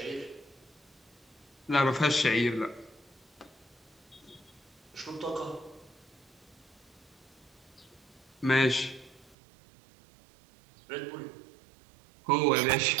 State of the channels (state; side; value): drops out; left; at 9.3 s